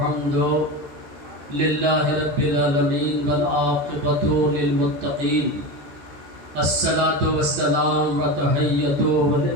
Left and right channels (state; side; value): late; left; 14 ms